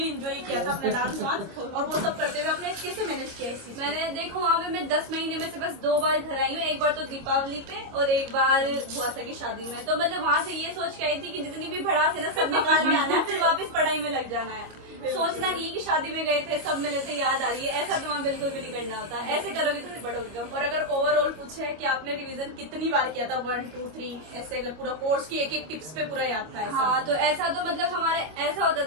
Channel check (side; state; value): left; late; 25 ms